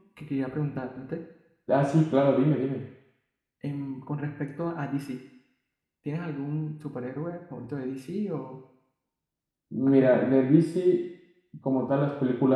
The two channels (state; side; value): identical; both; correlation 1.00